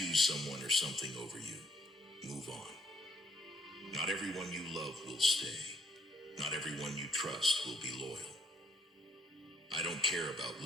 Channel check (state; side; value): normal; both; correlation 0.67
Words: someone or something over you, move on. Not everyone you love will stay. Not everyone you trust will be loyal. I don't care about